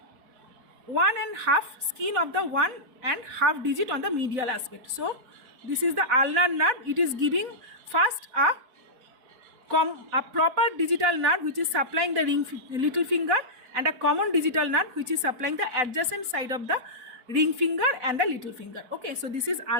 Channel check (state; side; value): late; left; 4.1 ms